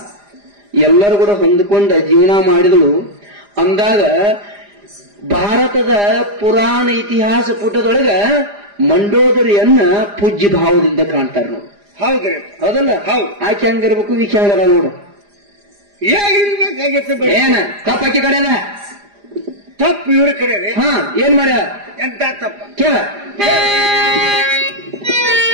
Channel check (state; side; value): late; left; 4.9 ms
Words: ಎಲ್ಲರೂ ಕೂಡ ಹೊಂದ್ಕೊಂಡ ಜೀವನ ಮಾಡಿದಳು. ಅಂದಾಗ ಭಾರತದ ಪುರಾಣ ಇತಿಹಾಸ ಪುಟದೊಳಗ ಮಂಡೋದರಿಯನ್ನ ಪೂಜ್ಯ ಭಾವದಿಂದ ಕಾಣ್ತಾರೆ ನೋಡಿ. ಹೌದ್ರಿ? ಹೌದಲ್ಲ? ಹೌದು. ಆಕೆ ಹಂಗಿರ್ಬೇಕು, ಈಕೆ ಹಂಗಾರ ನೋಡು. ಹೇಗಿರ್ಬೇಕಾಗಿತ್ತು? ಏನ ತಪ್ಪಾಕಿ ಕಡೆನ ತಪ್ಪು ಇವ್ರ ಕಡೆ. ಏನ್ ಮಾಡ್ಯ? ಎಂತ ತಪ್ಪ ಕೇಳ.